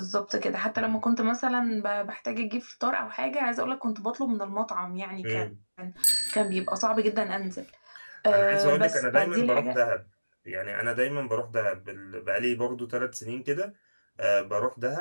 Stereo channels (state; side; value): inverted; both; correlation -1.00